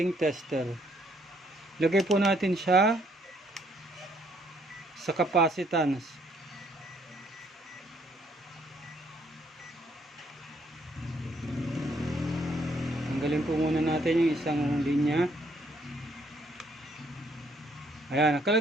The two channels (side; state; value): both; normal; correlation 0.68